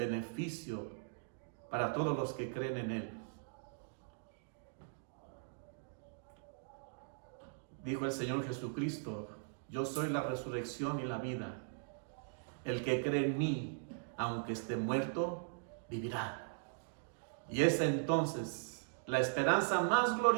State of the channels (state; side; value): silent; left; digital silence